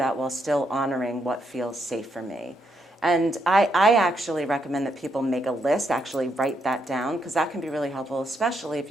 while still honoring what feels safe for me? And I actually recommend that people make a list, actually write that down, because that can be really helpful, especially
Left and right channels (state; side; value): normal; both; correlation 0.78